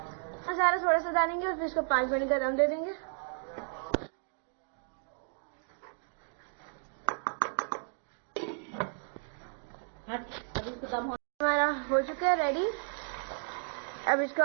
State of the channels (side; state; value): left; silent; 56 dB below the other